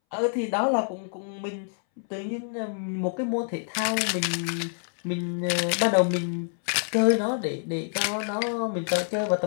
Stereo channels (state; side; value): silent; right; 60 dB below the other